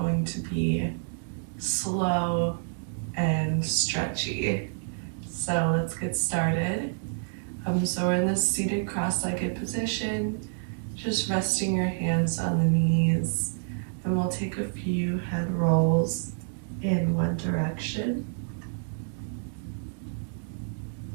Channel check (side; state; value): left; silent; digital silence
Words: to be slow and stretchy. So let's get started. So we're in this seated cross-legged position, just resting your hands on the knees, and we'll take a few head rolls in one direction.